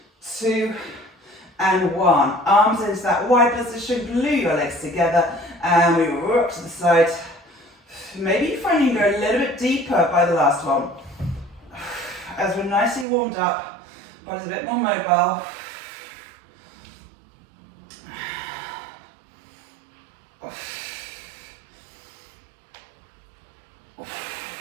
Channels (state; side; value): drops out; left; at 13.1 s